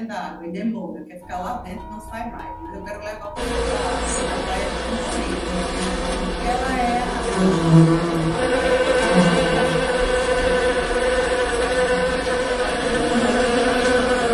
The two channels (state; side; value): identical; both; correlation 1.00